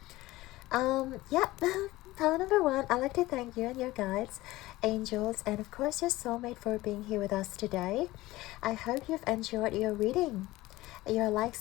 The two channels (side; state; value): right; quieter; 18.3 dB